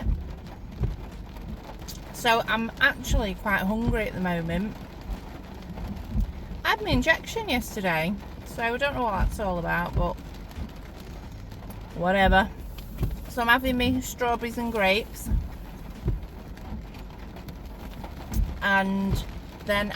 So I'm actually quite hungry at the moment. I had my injection yesterday, so I don't know what that's all about, but whatever. So I'm having me strawberries and grapes, and then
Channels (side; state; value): both; identical; correlation 1.00